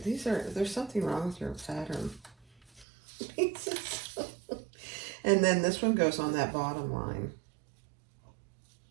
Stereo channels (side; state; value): left; drops out; at 2.9 s